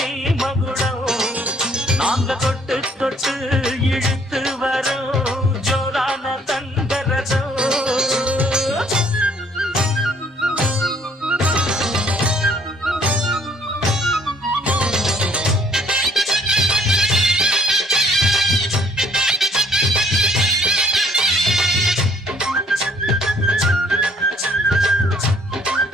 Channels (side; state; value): both; normal; correlation 0.62